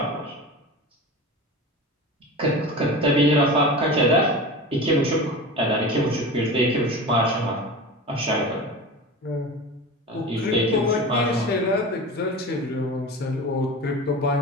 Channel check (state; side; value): normal; both; correlation 0.31